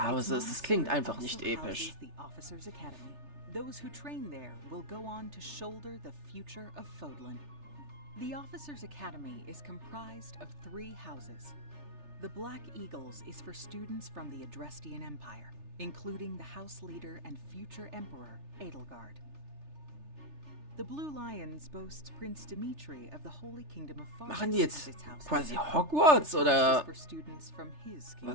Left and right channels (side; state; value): left; late; 3.3 ms